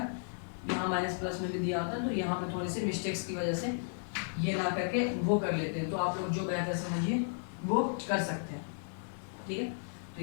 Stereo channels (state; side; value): silent; right; 55 dB below the other